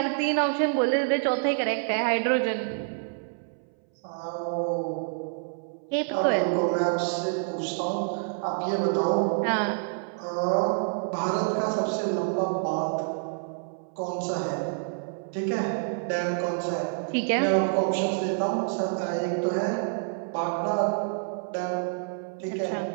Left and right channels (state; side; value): silent; left; 59 dB below the other